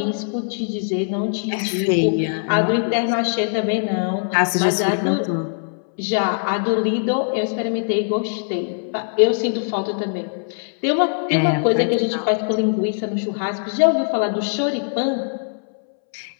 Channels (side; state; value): right; silent; 65 dB below the other